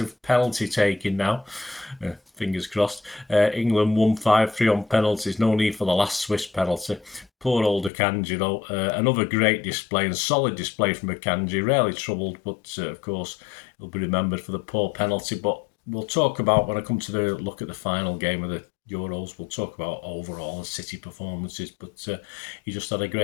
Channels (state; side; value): drops out; right; at 7.9 s